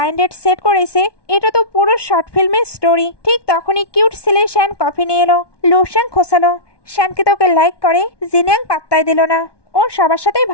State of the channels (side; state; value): right; late; 1.2 ms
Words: ডেট সেট করেছে, এটা তো পুরো শর্ট ফিল্মের স্টোরি। ঠিক তখনই কিউট ছেলে শ্যান কফি নিয়ে এলো। লুশ্যাং খোসালো, শ্যানকে তোকে লাইক করে? জিনিয়াং পাত্তাই দিল না, ও সবার সাথেই